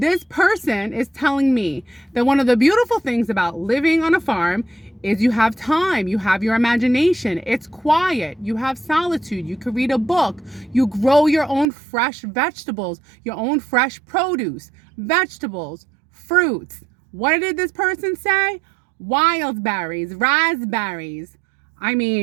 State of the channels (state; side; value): drops out; left; at 11.7 s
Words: person is telling me that one of the beautiful things about living on a farm is you have time, you have your imagination, it's quiet, you have solitude, you can read a book, you grow your own fresh vegetables, your own fresh produce, vegetables, fruits. What did this person say? Wild berries, raspberries. I